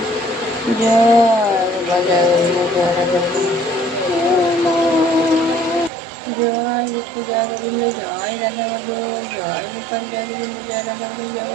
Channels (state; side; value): drops out; left; at 5.9 s